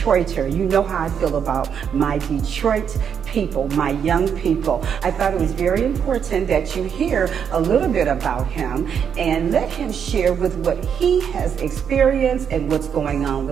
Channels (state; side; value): quieter; left; 7.6 dB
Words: You know how I feel about my Detroit people, my young people. I thought it was very important that you hear a little bit about him and let him share with what he has experienced and what's going on